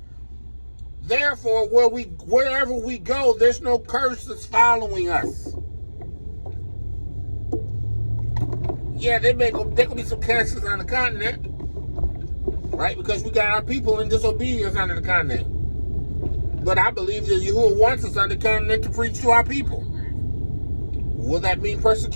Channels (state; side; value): inverted; both; correlation -1.00